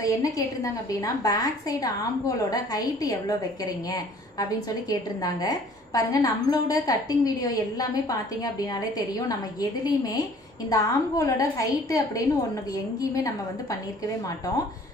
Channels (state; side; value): normal; both; correlation 0.53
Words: என்ன கேட்டிருந்தாங்க அப்படினா பேக் சைடு ஆம்கோலோட ஹைட் எவ்வளவு வைக்கிறீங்க அப்படினு சொல்லி கேட்டிருந்தாங்க. பாருங்க நம்மளோட கட்டிங் வீடியோ எல்லாமே பாத்தீங்க அப்படினாலே தெரியும் நம்ம எதிலீமே இந்த ஆம்கோலோட ஹைட் அப்படினு ஒண்ணுக்கு எங்கேயுமே நம்ம வந்து பண்ணிருக்கவே மாட்டோம்.